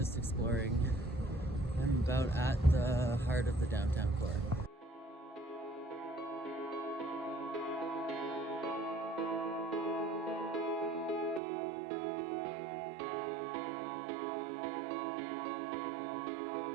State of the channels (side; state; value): left; drops out; at 11.4 s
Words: exploring. I'm about at the heart of the downtown core.